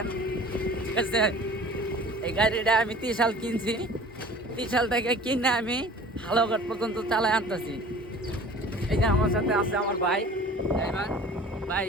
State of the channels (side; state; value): both; normal; correlation 0.45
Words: ঠিক আছে? এই গাড়িটা আমি 30 সাল কিনছি। 30 সাল থেকে কিনে আমি হালঘাট পর্যন্ত চালায় আনতেছি। এই যে আমার সাথে আছে আমার ভাই ড্রাইভার। ভাই,